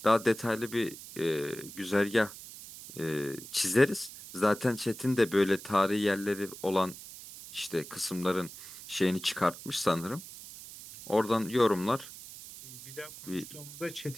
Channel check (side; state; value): right; noise; hiss, 14 dB below the sound